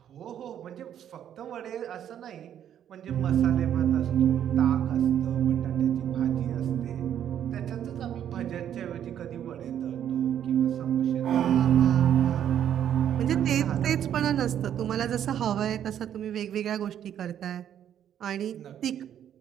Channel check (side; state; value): left; quieter; 10.0 dB